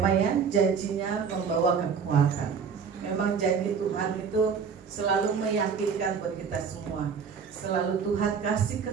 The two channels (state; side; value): quieter; left; 6.2 dB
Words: ya, janjinya membawa kekuatan. Memang janji Tuhan itu selalu meyakinkan buat kita semua. Selalu Tuhan kasih